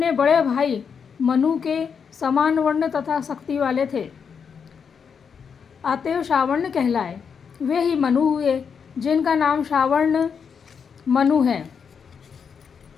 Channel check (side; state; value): right; quieter; 6.5 dB